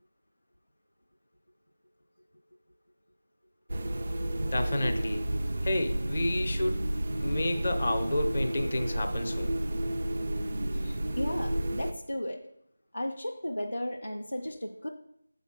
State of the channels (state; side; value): inverted; both; correlation -0.97